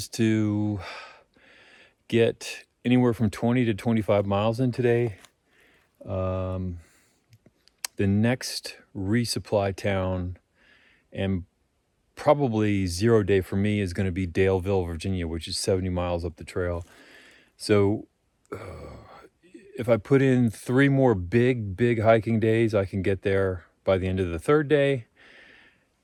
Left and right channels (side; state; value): both; identical; correlation 1.00